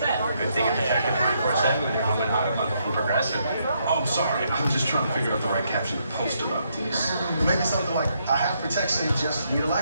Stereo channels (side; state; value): both; inverted; correlation -0.75